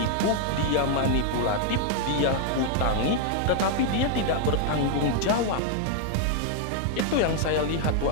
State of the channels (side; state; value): both; different; correlation 0.00